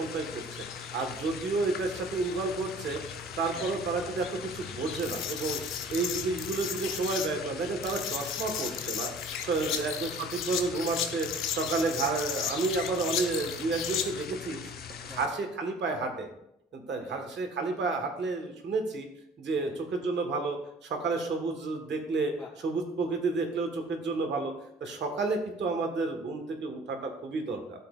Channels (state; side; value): normal; both; correlation 0.48